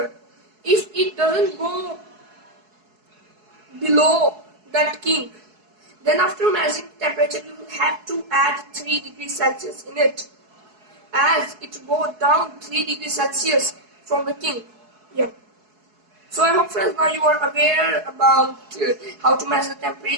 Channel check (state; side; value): late; left; 4.7 ms